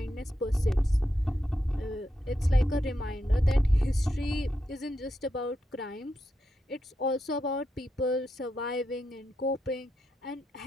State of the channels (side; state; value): both; normal; correlation 0.85